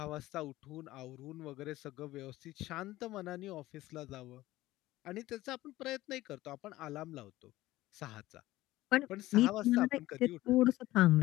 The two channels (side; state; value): right; quieter; 16.9 dB